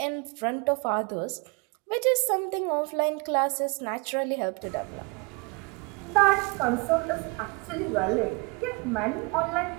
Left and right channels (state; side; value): quieter; left; 29.9 dB